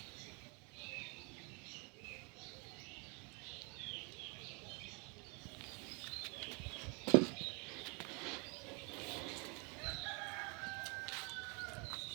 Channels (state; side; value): quieter; left; 32.1 dB